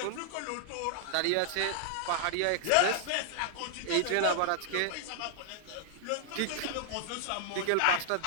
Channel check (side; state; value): both; different; correlation 0.00